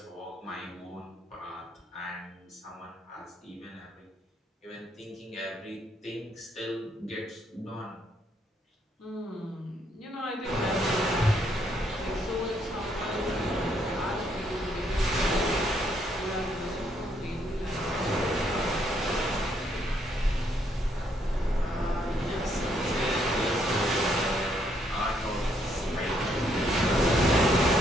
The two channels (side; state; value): both; normal; correlation 0.72